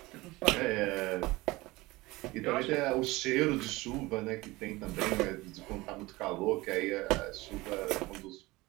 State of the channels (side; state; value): left; quieter; 21.0 dB